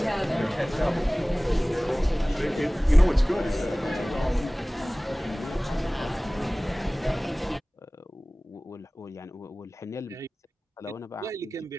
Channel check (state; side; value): normal; both; correlation 0.98